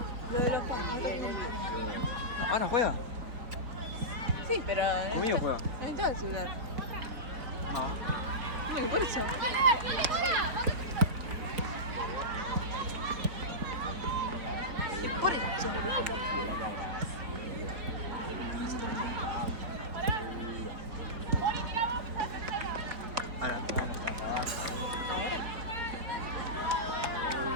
Lo de los panes. No, Ana juega. Sí, pero. Conmigo juega. Entonces el celular. No. Mira, por eso. Por eso. Ahora, bueno, está trabajo.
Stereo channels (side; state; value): left; late; 4.3 ms